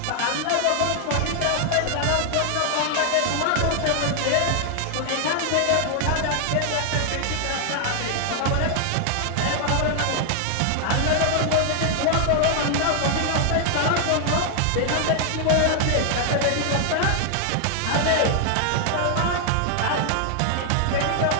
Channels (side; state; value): both; different; correlation 0.00